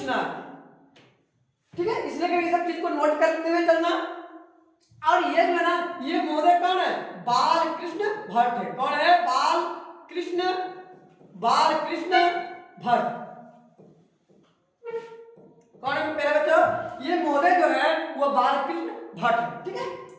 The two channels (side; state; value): both; identical; correlation 1.00